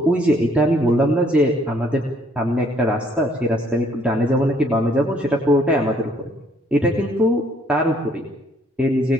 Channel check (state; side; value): normal; both; correlation 0.64